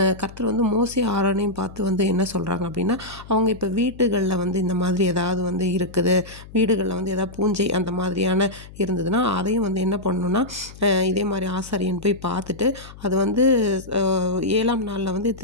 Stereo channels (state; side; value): noise; left; hum, 18 dB below the sound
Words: கர்த்தர் மோசே ஆரோனையும் பார்த்து என்ன சொல்கிறாங்க அப்படின்னா, அவங்க இப்போ வீட்டுகளில் இந்த மாதிரி ஏதாவது இருக்குது, வீடுகளில் ஏதாவது பூஞ்சை அந்த மாதிரியான இருந்ததுன்னா அதையும் என்ன பண்ணணும்னா, இதே மாதிரி ஆசாரியன் போய் பார்த்துட்டு அது 7ஆம் நாளில்